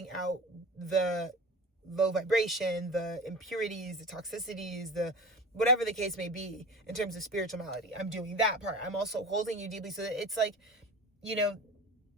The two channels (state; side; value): normal; both; correlation 0.35